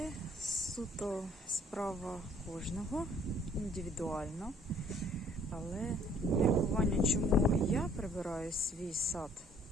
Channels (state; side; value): normal; both; correlation 0.59